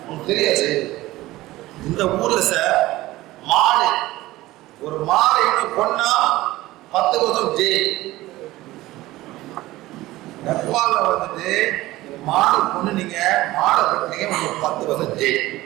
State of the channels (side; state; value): left; quieter; 17.6 dB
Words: உங்களுக்கு தெரியாது. இந்த ஊரில் சார் மாடு ஒரு மாடை இன்னும் கொன்னா 10 வருஷம் ஜெயில். நெப்பால வந்துட்டு மாடு கொண்டு நீங்க மாடை கட்டினீங்க உங்களுக்கு 10 வருஷம் ஜெயில்.